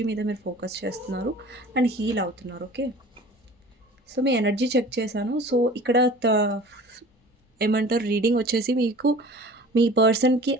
మీద మీరు ఫోకస్ చేస్తున్నారు అండ్ హీల్ అవుతున్నారు. ఓకే. సో మీ ఎనర్జీ చెక్ చేశాను. సో ఇక్కడ ఏమంటారు రీడింగ్ వచ్చేసి మీకు మీ పర్సన్‌కి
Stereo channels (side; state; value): both; normal; correlation 0.43